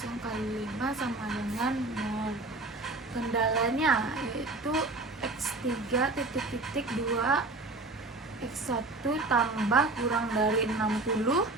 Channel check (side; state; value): left; quieter; 3.1 dB